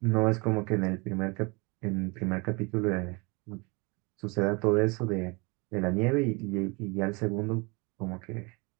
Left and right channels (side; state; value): left; quieter; 28.4 dB